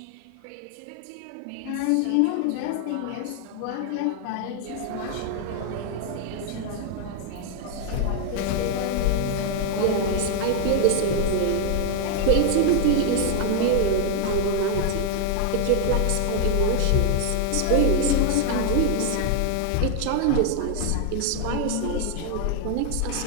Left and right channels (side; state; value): both; different; correlation 0.00